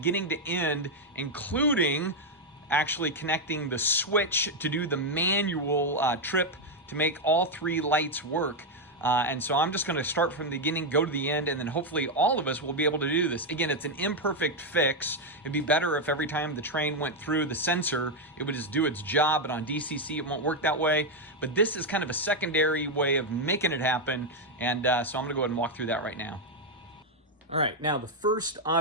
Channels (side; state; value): both; normal; correlation 0.02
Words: to end, including actually connecting the switch to do the manual trip to make all 3 lights work. And so I'm just going to start from the beginning, go to the end, and then hopefully all of us will be able to do this. Again, it's an imperfect fix. It'd be better if every time the train went through the sensor, it would just do its job, but on DCC, it won't work that way. But this is kind of a secondary way of making it happen, and so I'm going to go ahead and walk through that right now. All right, now the first